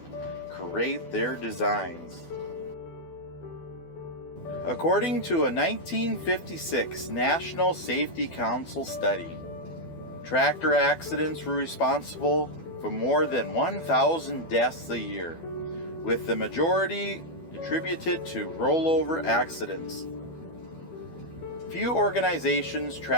create their designs. According to a 1956 National Safety Council study, tractor accidents were responsible for more than 1,000 deaths a year, with the majority attributed to rollover accidents. Few organizations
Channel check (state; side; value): late; right; 12 ms